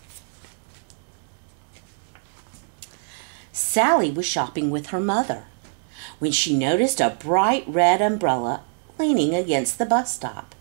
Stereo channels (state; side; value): silent; left; digital silence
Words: Sally was shopping with her mother when she noticed a bright red umbrella leaning against the bus stop.